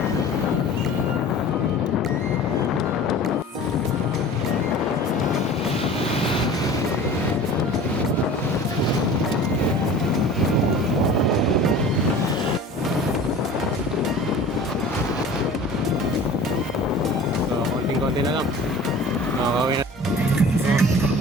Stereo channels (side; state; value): both; normal; correlation 0.41